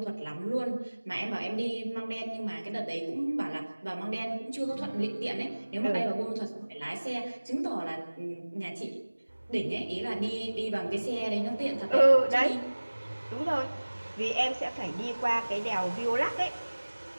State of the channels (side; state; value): both; inverted; correlation -1.00